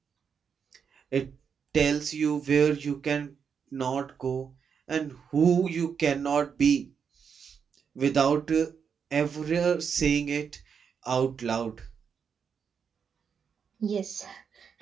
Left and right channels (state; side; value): quieter; left; 6.7 dB